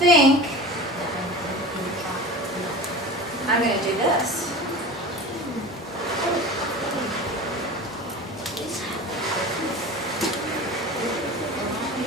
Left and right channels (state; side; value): normal; both; correlation 0.33